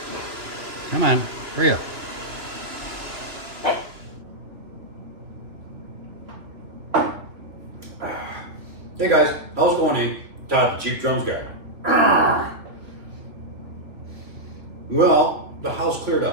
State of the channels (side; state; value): left; late; 2.7 ms